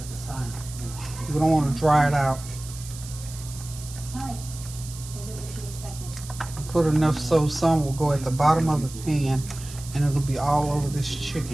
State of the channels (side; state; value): right; noise; hiss, 14 dB below the sound